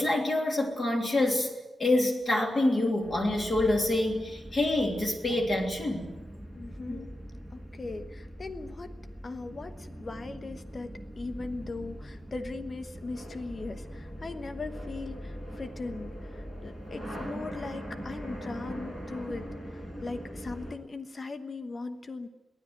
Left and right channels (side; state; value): both; normal; correlation 0.90